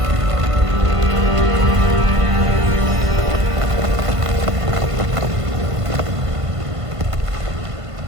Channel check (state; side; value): late; left; 1.5 ms